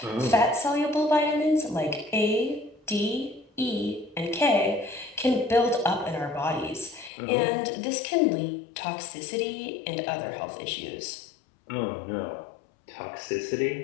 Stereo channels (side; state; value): right; drops out; at 7.1 s